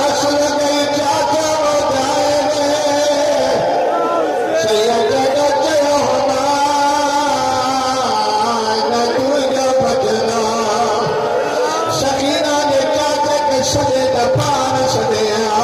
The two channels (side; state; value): both; identical; correlation 1.00